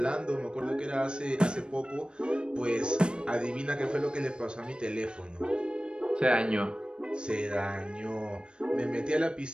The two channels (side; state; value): left; late; 0.054 ms